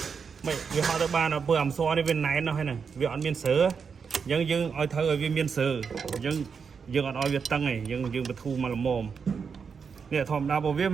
mày vì họ tới ba nó vừa làm so đi bên này nó hay này vì họ miền sớ dân ở thơ ở bên miền sớ dân ở việt tăng này dân bị thu mà làm mồm nè thòm đa bộ viết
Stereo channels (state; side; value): quieter; left; 6.0 dB